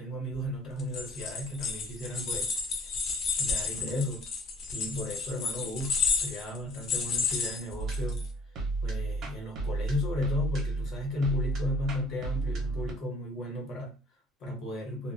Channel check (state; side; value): normal; both; correlation 0.54